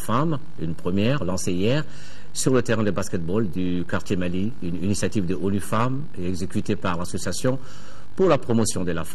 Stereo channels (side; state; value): both; identical; correlation 1.00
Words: une première lancée hier sur le terrain de basketball du quartier Mali, une initiative de ONU Femmes exécutée par l'association pour la promotion de la